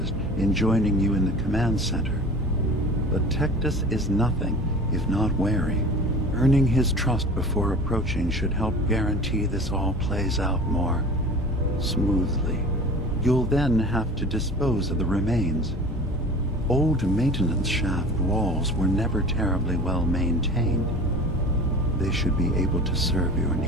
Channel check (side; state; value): both; normal; correlation 0.39